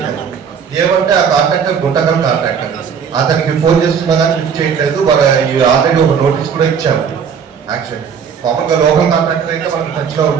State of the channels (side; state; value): left; quieter; 7.0 dB